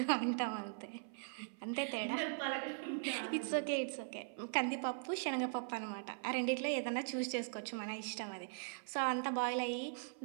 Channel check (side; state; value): left; silent; 51 dB below the other